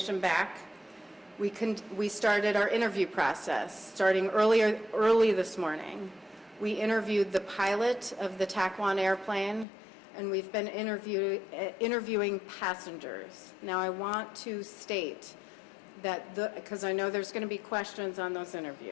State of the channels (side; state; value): right; drops out; at 9.7 s